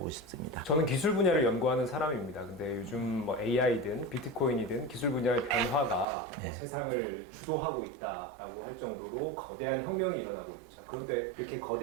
싶습니다. 저는 기술 분야를 연구하는 사람입니다. 근데 요즘 AI든 비트코인이든 기술 분야의 변화가 세상을 주도하고 있다라고 할 정도로 거대한 혁명이 일어나고 있죠. 그런데 이렇게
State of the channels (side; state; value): left; drops out; at 6.1 s